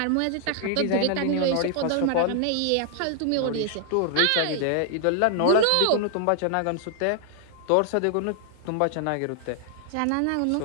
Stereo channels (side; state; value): both; different; correlation 0.00